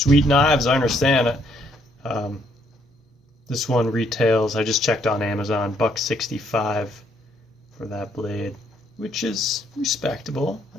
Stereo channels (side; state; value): both; normal; correlation 0.69